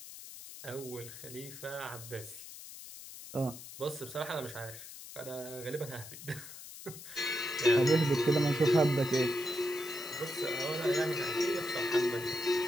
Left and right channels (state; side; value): noise; left; hiss, 13 dB below the sound